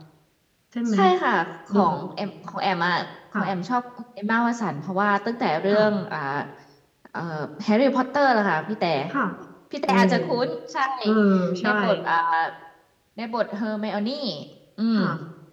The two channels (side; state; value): both; identical; correlation 1.00